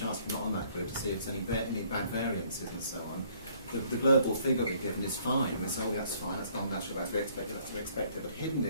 if you're not on that group to see if there's any bad variances and so on. The global figure we've given is fine. We say, oh, that's fine, that's non-natural, that's to be expected, that's to be expected. But hidden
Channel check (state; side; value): inverted; both; correlation -0.62